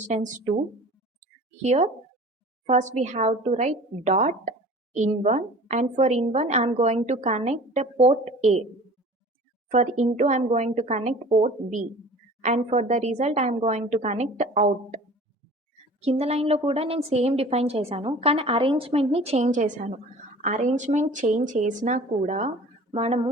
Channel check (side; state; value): both; normal; correlation 0.44